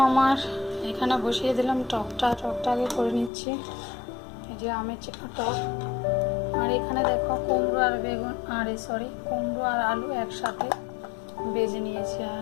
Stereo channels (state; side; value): drops out; right; at 3.3 s